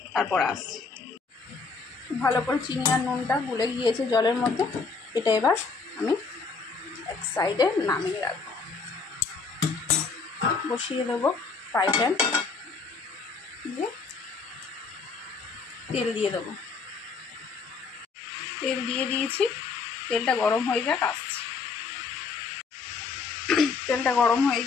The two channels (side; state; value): right; quieter; 4.7 dB